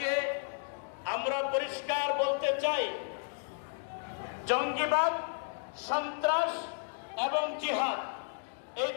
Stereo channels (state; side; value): silent; right; digital silence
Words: আমরা পরিষ্কার বলতে চাই, জঙ্গিবাদ, সন্ত্রাস এবং জিহাদ এই